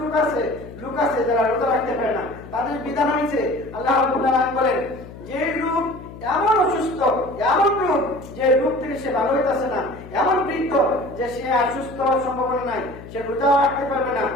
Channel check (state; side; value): noise; left; hum, 15 dB below the sound